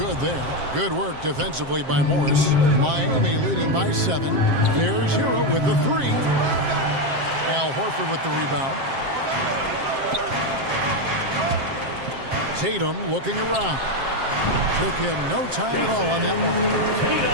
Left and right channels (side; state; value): left; late; 7.6 ms